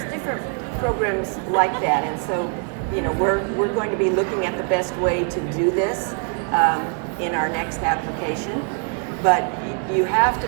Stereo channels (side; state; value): left; quieter; 39.5 dB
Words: different programs like that, and so we're going to be looking at the best way to do this in our next application. But you have to